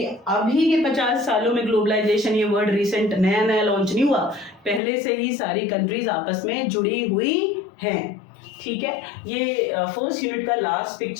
अभी के 50 सालों में ग्लोबलाइजेशन, ये वर्ड रिसेंट नया नया लॉन्च नहीं हुआ, पहले से ही सारी कंट्रीज आपस में जुड़ी हुई हैं। ठीक है, ये फर्स्ट यूनिट का लास्ट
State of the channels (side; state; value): right; drops out; at 4.8 s